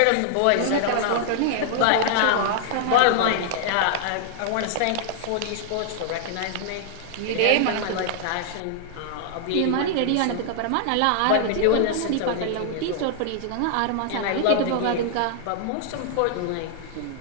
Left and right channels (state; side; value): different; both; correlation -0.01